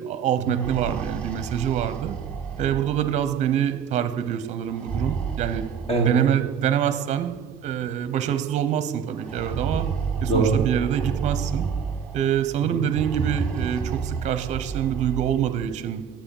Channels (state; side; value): quieter; left; 7.7 dB